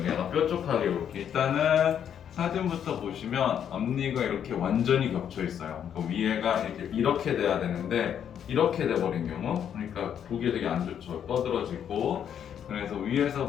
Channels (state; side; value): quieter; right; 8.9 dB